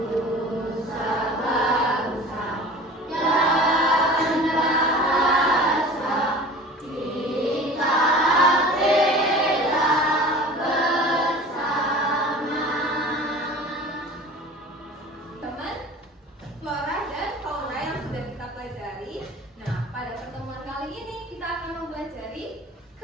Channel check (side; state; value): both; normal; correlation 0.41